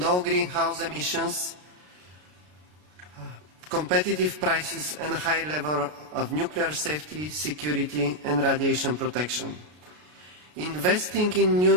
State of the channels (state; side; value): late; left; 33 ms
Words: greenhouse emissions, competitive prices and a high level of nuclear safety, security and radiation protection. Investing in new